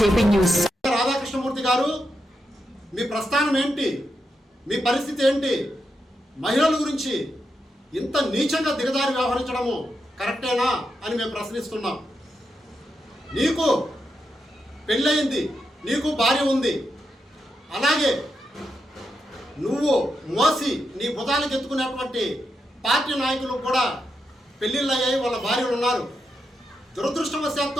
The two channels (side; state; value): both; normal; correlation 0.85